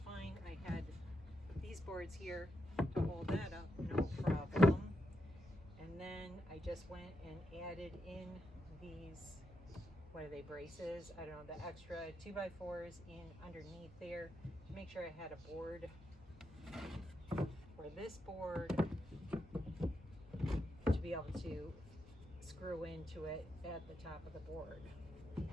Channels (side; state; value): both; normal; correlation 0.83